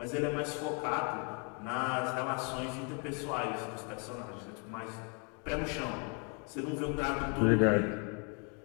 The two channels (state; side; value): quieter; right; 36.9 dB